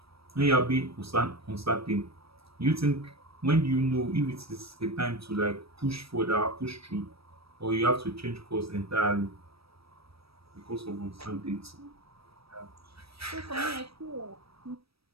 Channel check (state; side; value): late; left; 0.76 ms